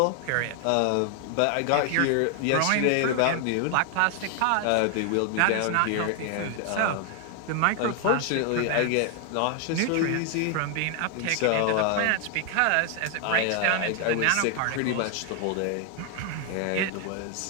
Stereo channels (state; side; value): different; both; correlation 0.00